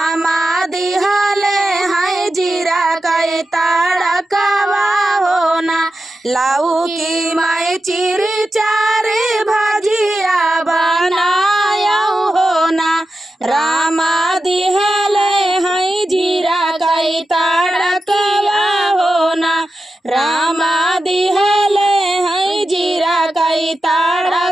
दिहले हैं जीरा कई तड़कवा हो ना। लाऊ की मैं चिरी चारी भाजिया बनायऊ हो ना। रामा दिहले हैं जीरा कई तड़कवा हो ना। रामा दिहले हैं जीरा कई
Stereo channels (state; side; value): normal; both; correlation 0.91